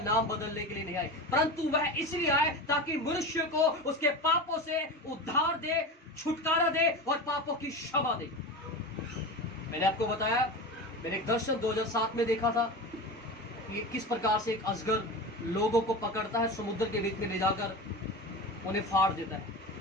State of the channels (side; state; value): both; normal; correlation 0.27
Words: बदलने के लिए नहीं आए, परंतु वह इसलिए आए ताकि मनुष्य को उसके पापों से उद्धार दे, छुटकारा दे और पापों की क्षमा दे। मैंने आपको बताया, मैंने एक दर्शन 2007 में देखा था कि किस प्रकार से एक अजगर लोगों को पकड़ता है, समुद्र के बीच में ले जाकर उन्हें फाड़ देता है।